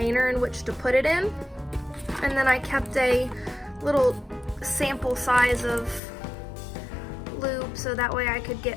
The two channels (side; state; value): right; drops out; at 6.0 s